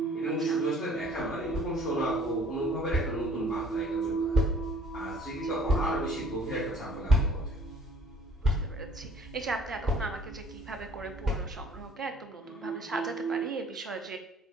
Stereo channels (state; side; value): normal; both; correlation 0.55